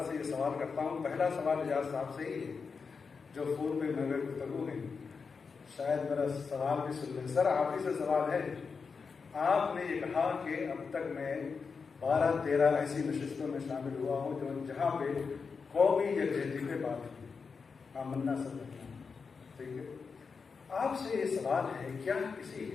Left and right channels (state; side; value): quieter; right; 5.2 dB